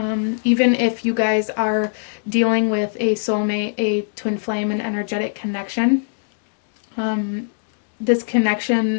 Even if you guys are dealing with a soulmate, a twin flame, an energetic connection, this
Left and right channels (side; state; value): right; silent; digital silence